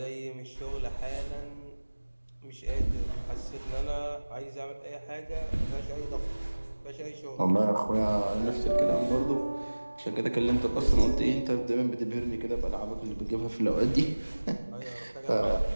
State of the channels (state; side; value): inverted; both; correlation -1.00